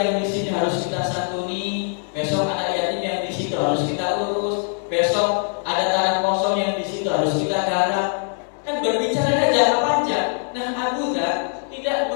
di sini harus kita santuni. Besok anak yatim yang di situ harus kita urus. Besok ada tanah kosong yang di situ harus kita garap. Kan berbicara jangka panjang. Nah, Abu Dzar tidak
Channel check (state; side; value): silent; right; 57 dB below the other